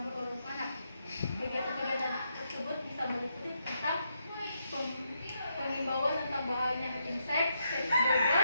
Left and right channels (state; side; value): inverted; both; correlation -0.80